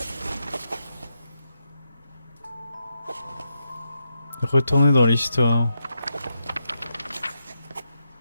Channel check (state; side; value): inverted; both; correlation -0.84